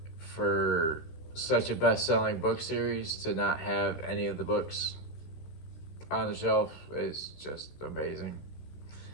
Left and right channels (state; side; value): late; right; 15 ms